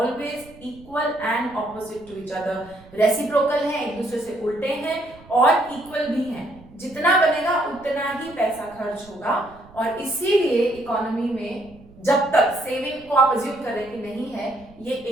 equal and opposite to each other। Reciprocal हैं, एक दूसरे से उल्टे हैं और इक्वल भी हैं। जितना बनेगा उतना ही पैसा खर्च होगा और इसीलिए इकोनॉमी में जब तक सेविंग को आप अज्यूम कर रहे हैं कि नहीं है, ये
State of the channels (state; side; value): noise; right; rumble, 23 dB below the sound